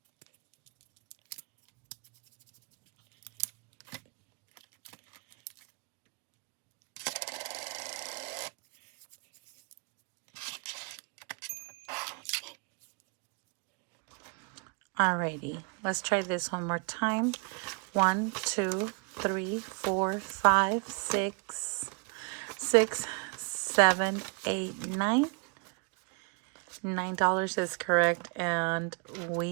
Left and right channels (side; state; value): left; quieter; 33.9 dB